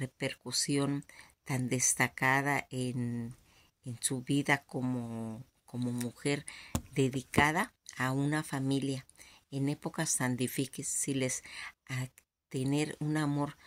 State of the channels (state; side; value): identical; both; correlation 1.00